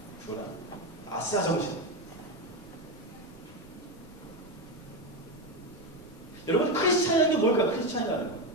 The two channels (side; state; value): both; normal; correlation 0.13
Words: 고난. 아싸 정신. 여러분 크리스찬이라는 게 뭘까? 크리스찬이라는 거.